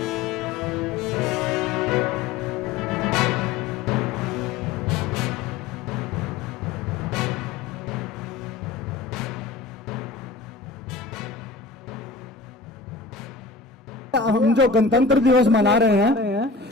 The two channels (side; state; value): right; quieter; 4.3 dB